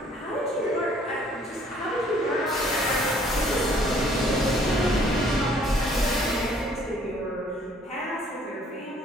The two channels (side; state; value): both; normal; correlation 0.60